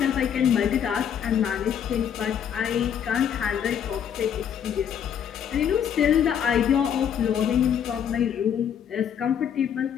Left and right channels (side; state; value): right; quieter; 8.6 dB